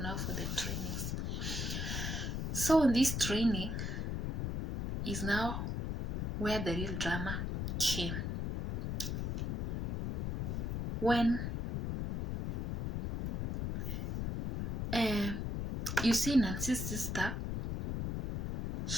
trainings. So in this training is now where the real drama came. When you see Nancy's sister,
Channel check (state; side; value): noise; left; rumble, 2 dB below the sound